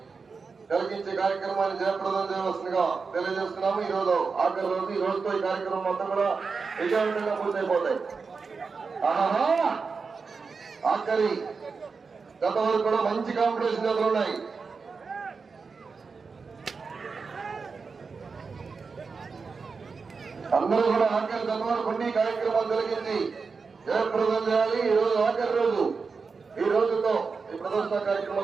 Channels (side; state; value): left; quieter; 4.9 dB